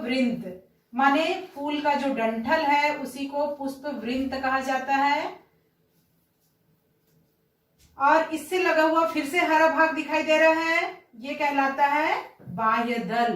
वृंत। माने फूल का जो डंठल है उसी को पुष्प वृंत कहा जाता है। और इससे लगा हुआ फिर से हरा भाग दिखाई दे रहा है, ये कहलाता है बाह्य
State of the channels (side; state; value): both; identical; correlation 1.00